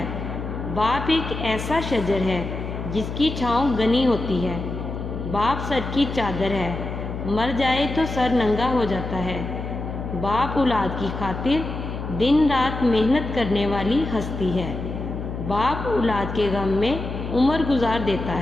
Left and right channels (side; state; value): left; noise; hum, 6 dB below the sound